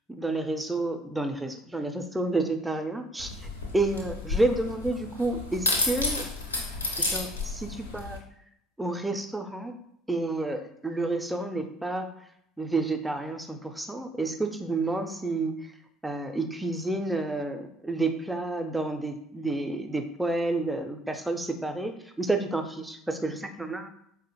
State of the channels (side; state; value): both; normal; correlation 0.61